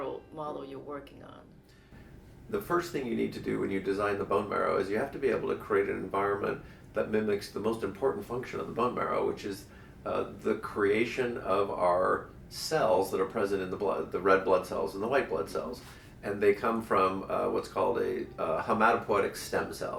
model you're working on? The first thing you need to do when you design the bone marrow is you have to be able to create an environment that mimics the most important function of the bone marrow, which is the creation of our cells that are present in the blood, the red blood cells and the white blood cells. And they come from what's called a hematopoietic stem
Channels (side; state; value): both; identical; correlation 1.00